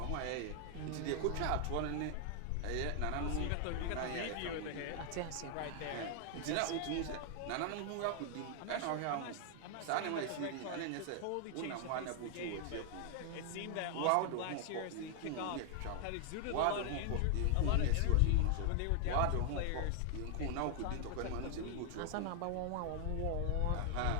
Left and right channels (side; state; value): both; different; correlation 0.00